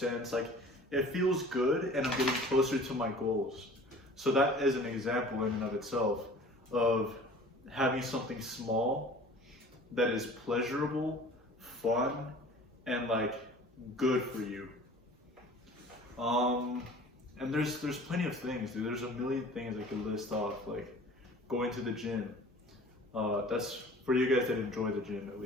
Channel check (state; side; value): normal; both; correlation 0.46